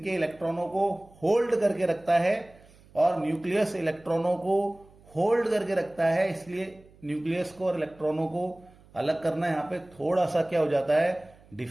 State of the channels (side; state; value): right; noise; hum, 26 dB below the sound